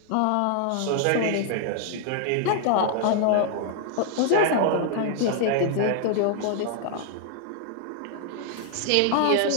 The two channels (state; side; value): different; both; correlation 0.00